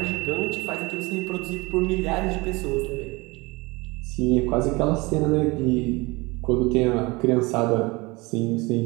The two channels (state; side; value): quieter; left; 24.2 dB